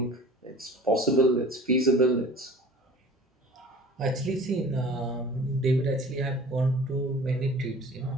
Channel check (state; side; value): normal; both; correlation 0.44